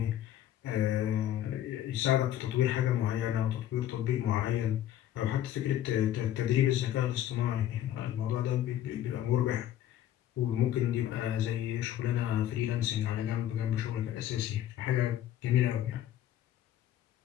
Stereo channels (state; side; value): quieter; right; 11.9 dB